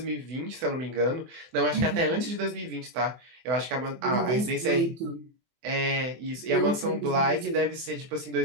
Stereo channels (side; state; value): left; late; 24 ms